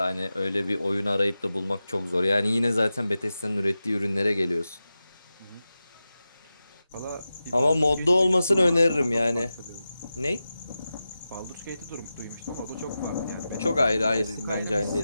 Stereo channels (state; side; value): inverted; both; correlation -0.93